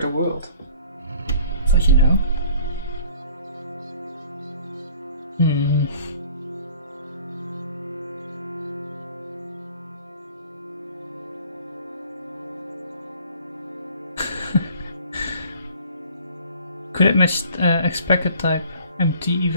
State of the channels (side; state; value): both; inverted; correlation -0.51